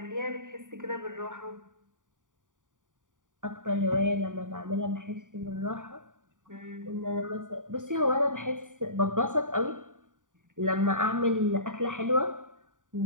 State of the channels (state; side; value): late; left; 0.88 ms